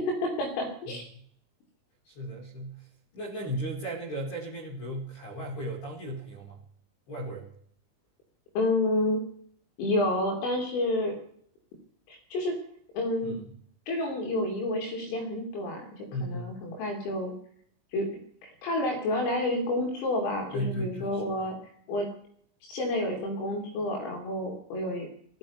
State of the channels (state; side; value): late; right; 20 ms